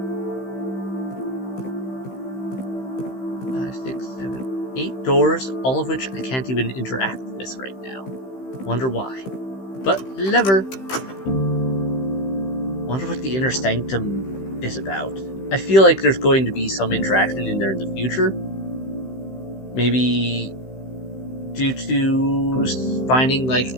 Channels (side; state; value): right; late; 15 ms